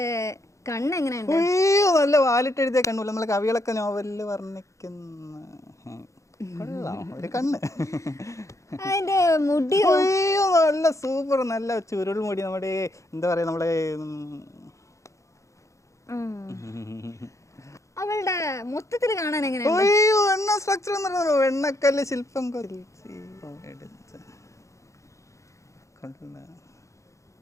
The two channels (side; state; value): right; late; 0.15 ms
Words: കണ്ണ് എങ്ങനെയുണ്ട്? അയ്യോ, നല്ല വാലിട്ട് എഴുതിയ കണ്ണു, നമ്മളെ കവികളൊക്കെ നോവലില് വർണ്ണിക്കുന്ന കൊള്ളാം ഒരു കണ്ണ്. അതിന്റെ മുടിയോ? അയ്യോ നല്ല സൂപ്പർ, നല്ല ചുരുൾ മുടി. നമ്മുടെ എന്താ പറയാ, നമ്മളെ അവളുടെ മൊത്തത്തിൽ കാണാൻ എങ്ങനെ? അയ്യോ എണ്ണ സ്ട്രക്ചർ എന്ന് പറഞ്ഞോ, എണ്ണക്കല്ല് ശില്പം